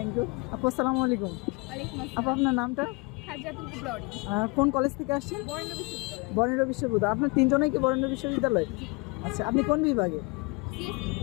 ইউ আপু। আসসালামু আলাইকুম। আপু আপনার নামটা? কোন কলেজ থেকে আসছেন? বরেন্দ্র বিশ্ববিদ্যালয়। আপনার তিনজনেই কি বরেন্দ্র বিশ্ববিদ্যালয়? আচ্ছা, আপনি কোন বিভাগে?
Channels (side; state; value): right; quieter; 28.5 dB